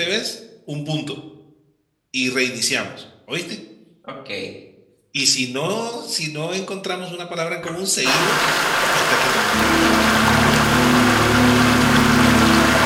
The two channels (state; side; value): identical; both; correlation 1.00